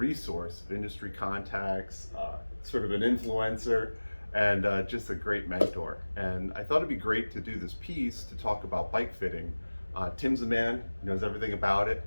of industry contacts, sort of an influencer, and just a great mentor. And I thought it'd be great to do this piece to talk about bike fitting. Tim's a man, knows everything about it.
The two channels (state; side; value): inverted; both; correlation -1.00